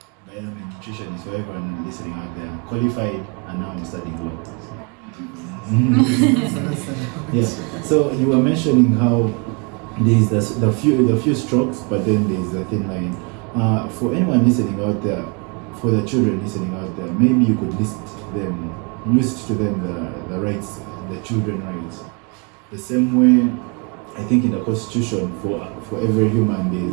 a nutritionist, so everyone listening out there, I'm qualified, and now I'm studying law. Yeah. So you were mentioning how there's the few strokes, but then there's the thin line. For anyone listening out there, for the children listening out there, maybe you could list to them the rights, the children rights. The same way, I think in the Constitution, for every human there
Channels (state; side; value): quieter; left; 32.8 dB